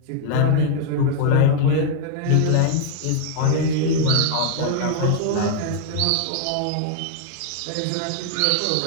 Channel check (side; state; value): both; different; correlation 0.00